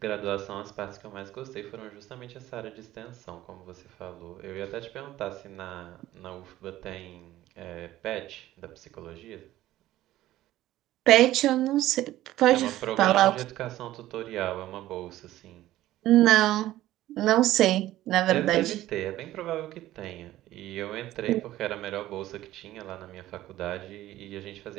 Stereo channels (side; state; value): left; quieter; 14.8 dB